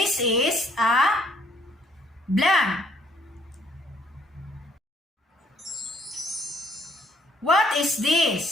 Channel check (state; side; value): normal; both; correlation 0.65